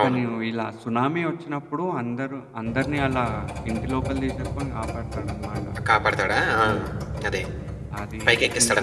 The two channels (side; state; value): both; identical; correlation 1.00